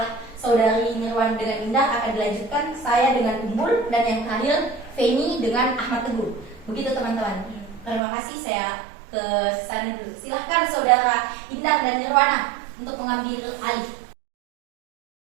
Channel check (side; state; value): left; drops out; at 8.0 s